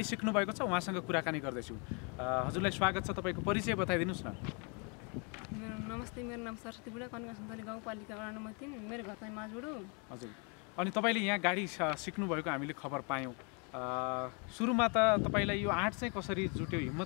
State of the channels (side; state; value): right; quieter; 34.8 dB